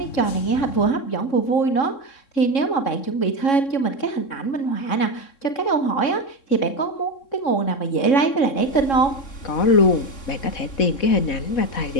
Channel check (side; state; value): right; late; 3.7 ms